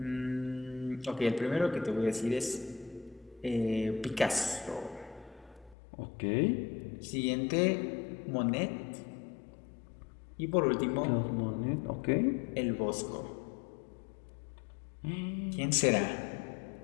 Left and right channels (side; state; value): right; drops out; at 5.8 s